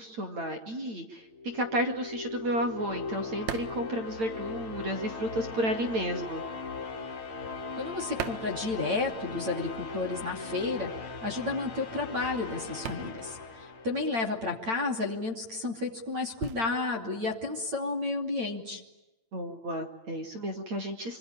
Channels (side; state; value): left; late; 8.9 ms